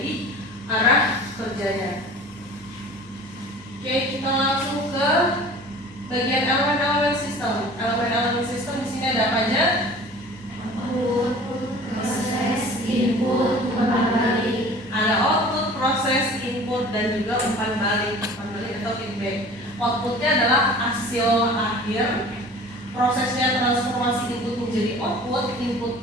arah kerjanya. Oke, kita langsung ke bagian elemen-elemen sistem. Elemen-elemen sistem di sini ada apa aja? Output, proses, input, umpan balik. Ada output, proses, input, dan juga umpan balik. Umpan balik atau feedback. Outputnya adalah hasil akhir. Prosesnya transformasi input menjadi output.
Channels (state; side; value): normal; both; correlation 0.43